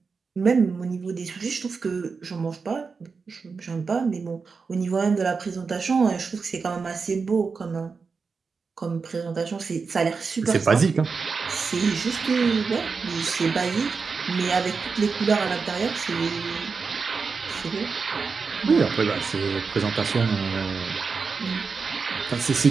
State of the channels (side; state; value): left; quieter; 5.0 dB